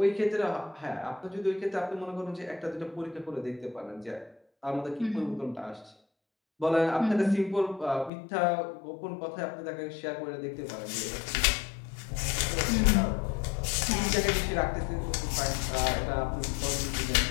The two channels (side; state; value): right; drops out; at 8.1 s